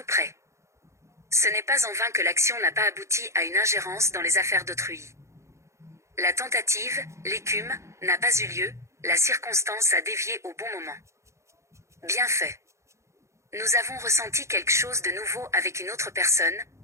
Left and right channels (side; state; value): left; late; 0.14 ms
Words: près. Ce n'est pas en vain que l'action n'a pas abouti à une ingérence dans les affaires d'autrui. La tentative, l'écume, n'a pas eu lieu, la circonstance a dévié au bon moment. Bien fait. Nous avons ressenti quelque chose de nouveau avec une autre personne,